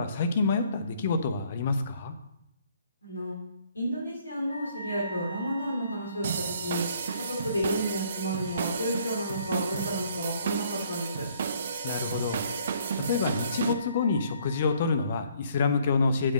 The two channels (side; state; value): both; inverted; correlation -0.63